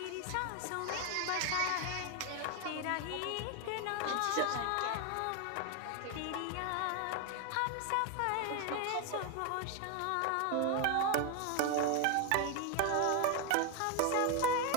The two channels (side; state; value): both; different; correlation 0.01